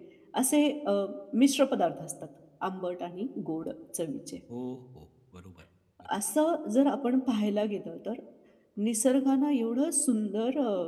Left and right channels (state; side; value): identical; both; correlation 1.00